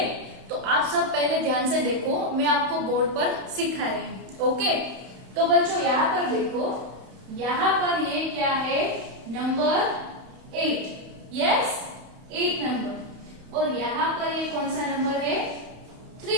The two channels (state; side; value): late; left; 31 ms